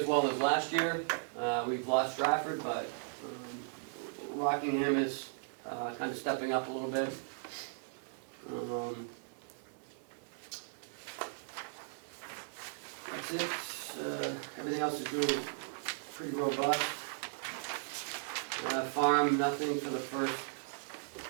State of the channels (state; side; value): silent; left; digital silence